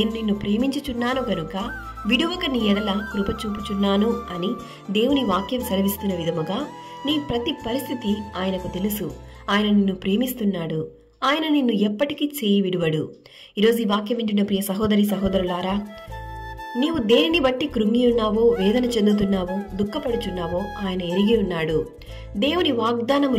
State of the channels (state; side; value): identical; both; correlation 1.00